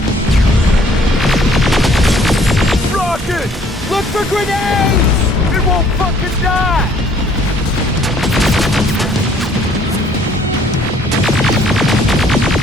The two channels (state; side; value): normal; both; correlation 0.60